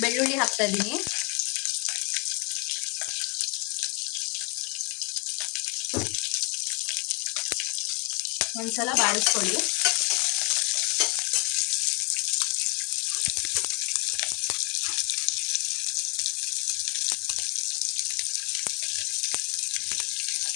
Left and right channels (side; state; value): right; quieter; 31.2 dB